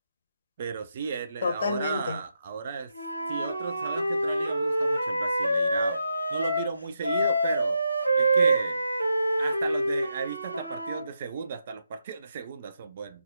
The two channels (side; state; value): both; inverted; correlation -0.84